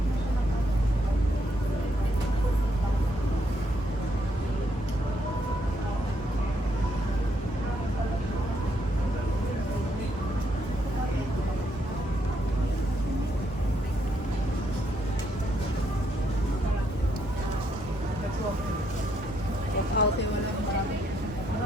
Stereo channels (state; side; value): normal; both; correlation 0.75